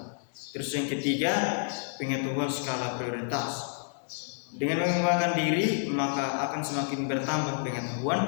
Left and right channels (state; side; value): silent; right; digital silence